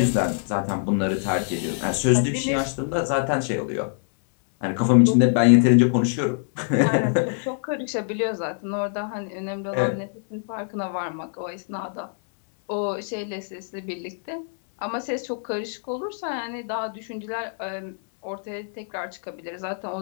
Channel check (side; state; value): right; silent; 62 dB below the other